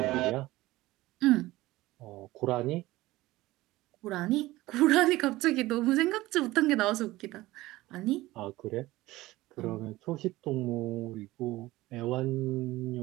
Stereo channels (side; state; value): left; quieter; 18.2 dB